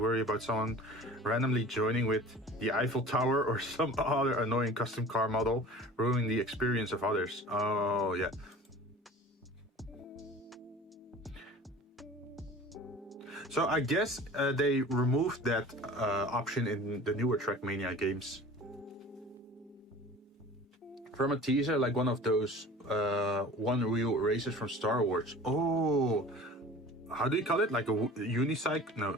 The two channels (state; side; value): normal; both; correlation 0.42